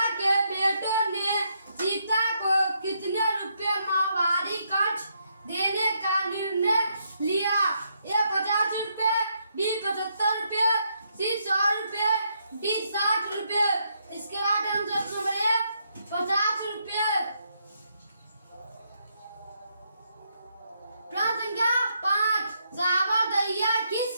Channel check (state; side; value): inverted; both; correlation -0.77